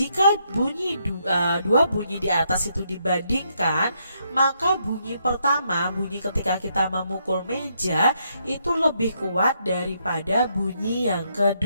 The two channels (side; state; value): both; inverted; correlation -0.76